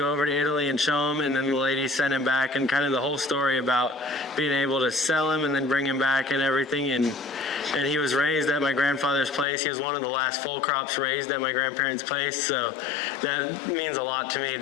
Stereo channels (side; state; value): right; drops out; at 9.5 s